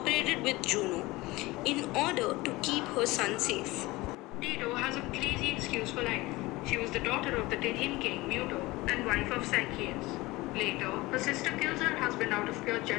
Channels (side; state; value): right; quieter; 20.7 dB